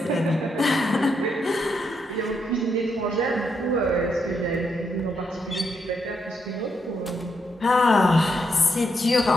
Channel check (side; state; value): both; normal; correlation 0.79